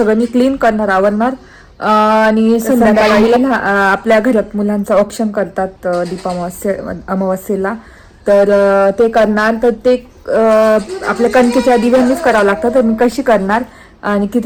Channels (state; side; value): identical; both; correlation 1.00